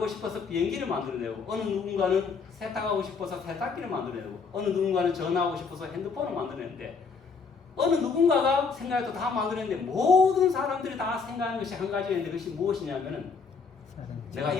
싶어서 비행기를 만들어내고, 어느 누군가는 세탁하고 싶어서 세탁기를 만들어내고, 어느 누군가는 전화하고 싶어서 핸드폰을 만들어내는데, 어느 누군가가 생각해도 다 만들어내는데, 모든 사람들이 다 생각하는 것이 한 가지가 있는데, 그것이 무엇이냐면은 내가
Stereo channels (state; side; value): quieter; right; 5.1 dB